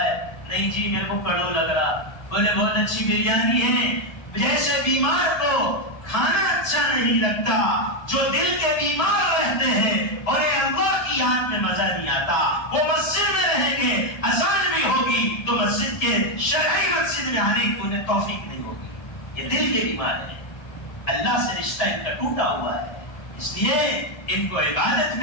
ہے، نہیں جی میرے کو کڑو لگ رہا، بولے بہت اچھی بریانی ہے۔ جیسے بیمار کو کھانا اچھا نہیں لگتا، جو دل کے بیمار رہتے ہیں اور اللہ کی یاد میں مزہ نہیں آتا، وہ مسجد میں رہیں گے، اذان بھی ہوگی تو مسجد کے شرعی مسجد میں آنے کی انہیں توفیق نہیں ہوگی۔ یہ دل کے بیمار ہیں، اللہ سے رشتہ ان کا ٹوٹا ہوا ہے، اس لیے ان کو عبادت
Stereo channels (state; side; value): late; right; 1.3 ms